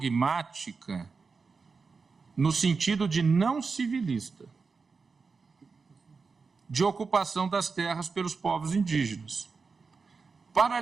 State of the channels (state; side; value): quieter; left; 4.7 dB